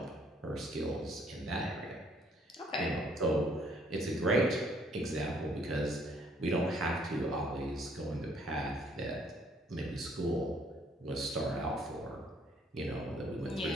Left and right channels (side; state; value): both; normal; correlation 0.64